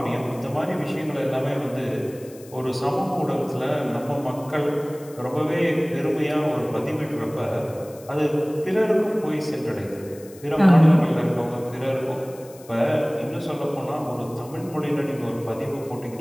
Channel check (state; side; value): noise; left; hiss, 22 dB below the sound